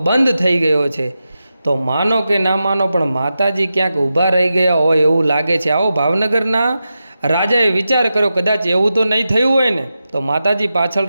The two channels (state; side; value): inverted; both; correlation -0.91